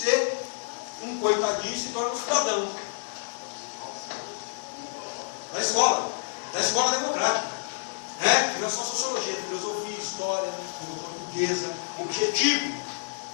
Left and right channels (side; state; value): right; silent; digital silence